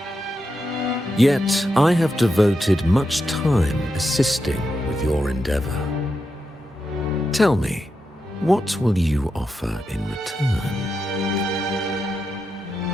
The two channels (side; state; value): both; normal; correlation 0.86